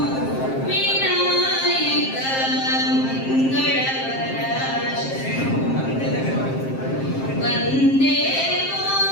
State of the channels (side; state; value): right; late; 7.5 ms